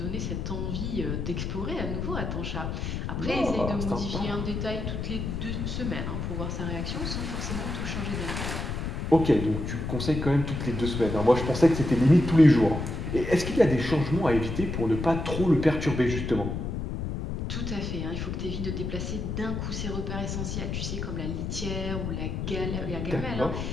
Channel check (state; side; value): noise; left; rumble, 3 dB below the sound